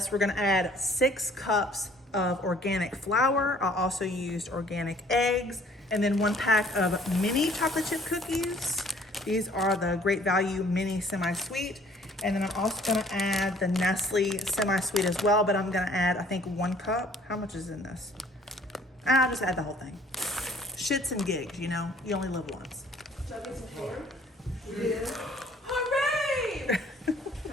we're gonna add 6 cups of organic flour. I also used organic eggs, and then 1 pack of mini chocolate chip cookies. These are the Great Value mini semi-sweet. And then I'm also gonna add the Nestle semi-sweet as well, but I'm gonna add, I think, 1 cup. How much is in this? I'll just add the whole thing. Shits and gigs, you know, you only live once. Should I get some hair? Yeah. Hooray! Can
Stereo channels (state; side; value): normal; both; correlation 0.57